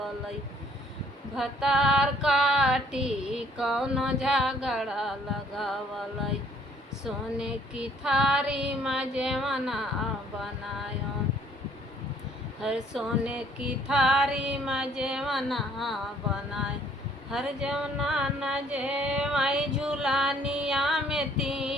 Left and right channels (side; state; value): both; normal; correlation 0.62